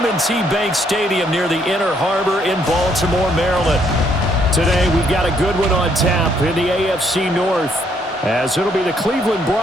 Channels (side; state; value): both; normal; correlation 0.70